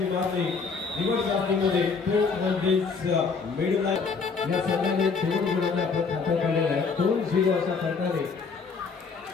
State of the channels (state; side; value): quieter; right; 5.0 dB